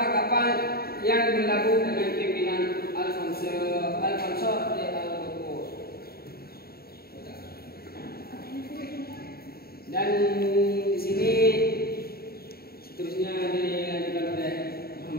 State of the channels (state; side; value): late; right; 0.45 ms